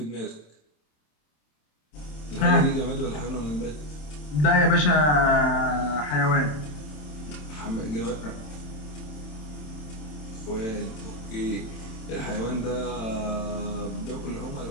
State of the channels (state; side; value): late; right; 27 ms